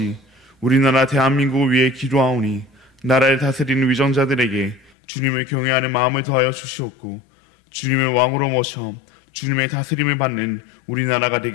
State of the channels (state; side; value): drops out; right; at 4.9 s